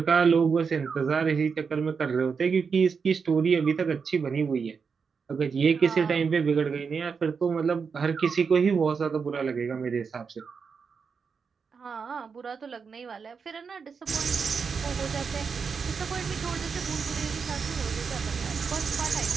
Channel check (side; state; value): left; quieter; 5.7 dB